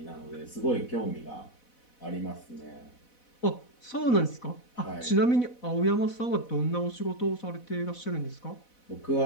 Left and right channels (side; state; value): right; late; 4.1 ms